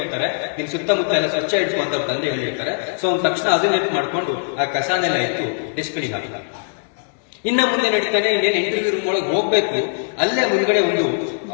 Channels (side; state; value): right; silent; digital silence